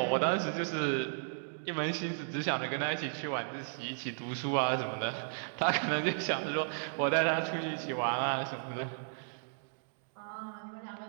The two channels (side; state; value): left; silent; digital silence